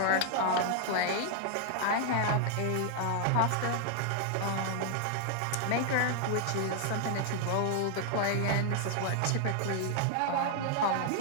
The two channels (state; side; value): different; both; correlation 0.00